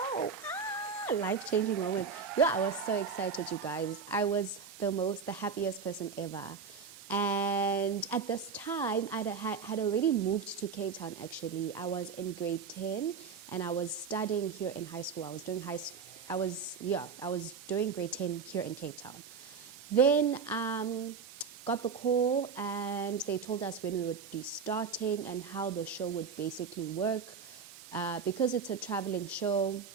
Life-changing moment. Yeah, I was so excited, you guys. I was the happiest person ever. And at this time, I had already moved to Cape Town, actually. I was in grade 10, and I was studying here in high school. I was doing I was doing grade 10 here in Cape Town. Then got the call and they told us when we would be starting and how the show would basically work. Because it's a traveling show,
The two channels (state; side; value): quieter; left; 5.8 dB